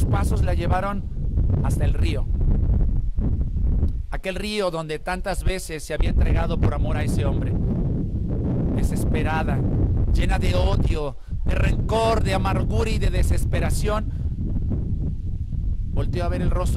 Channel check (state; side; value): identical; both; correlation 1.00